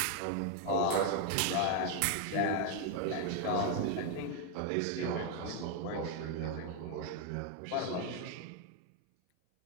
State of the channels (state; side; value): different; both; correlation 0.01